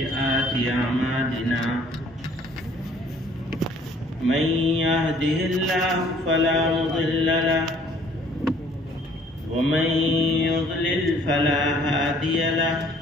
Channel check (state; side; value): normal; both; correlation 0.58